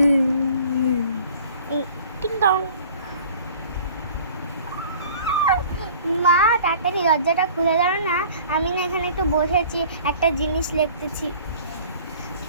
টিং টং। মা তাড়াতাড়ি দরজাটা খুলে দাও না, আমি না এখানে একটু বসেছি, একটা জিনিস লিখতেছি।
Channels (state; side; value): inverted; both; correlation -0.49